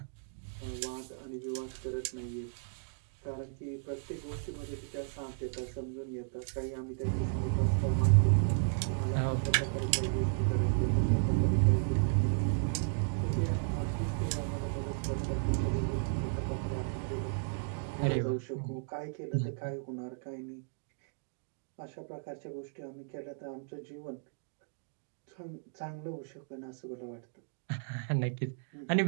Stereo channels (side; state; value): left; silent; digital silence